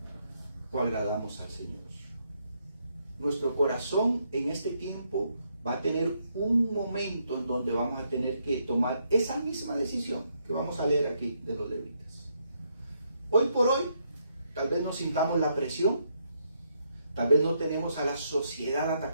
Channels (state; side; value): inverted; both; correlation -0.76